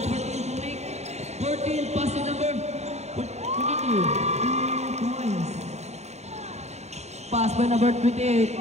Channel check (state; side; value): late; left; 0.32 ms